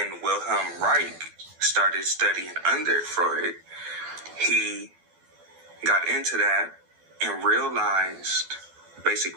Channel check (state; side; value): late; left; 12 ms